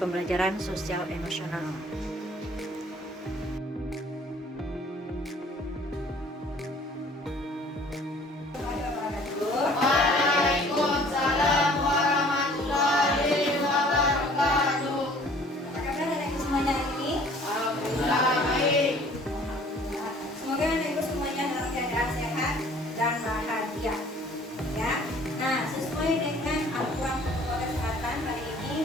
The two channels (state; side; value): normal; both; correlation 0.53